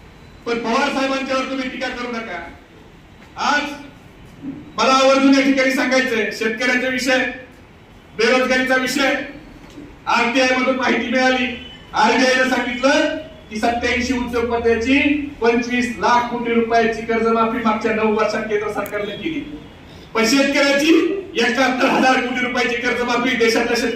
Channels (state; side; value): identical; both; correlation 1.00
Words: पण पवार साहेबांच्यावर तुम्ही टीका करू नका. आज मला आवर्जून या ठिकाणी सांगायचंय, शेतकऱ्यांचा विषय, बेरोजगारीचा विषय, आरटीआय मधून माहिती मिळाली. आरबीआयने सांगितलं की 87 उद्योगपत्याची 25 लाख कोटी रुपयाची कर्जमाफी मागच्या 9 वर्षात केंद्र सरकारने केली. पण शेतकऱ्याची 71,000 कोटी रुपयाची कर्जमाफी देशातल्या